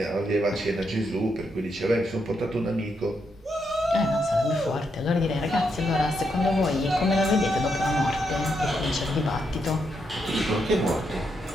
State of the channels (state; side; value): normal; both; correlation 0.80